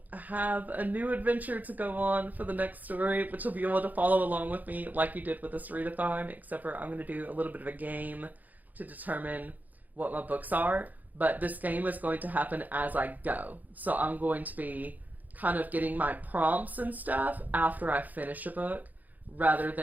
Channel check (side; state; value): left; late; 0.082 ms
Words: have a new adventure to go on for the next story, which will be able to follow along with me like you did with this readathon, except for I'm going to do a little bit of a game to determine what my books are, but this game is going to happen as I go. So I'm going to be kind of getting my prompts and stuff after I finish a book, rather